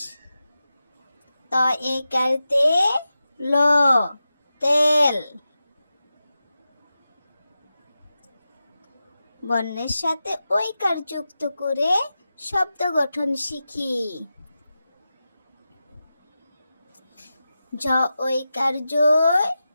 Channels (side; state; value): both; inverted; correlation -0.92